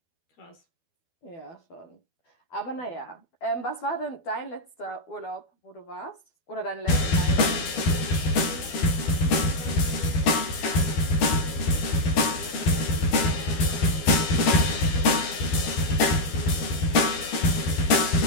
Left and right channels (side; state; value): right; late; 12 ms